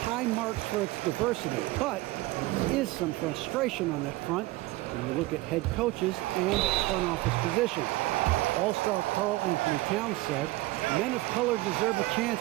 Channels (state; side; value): quieter; left; 19.7 dB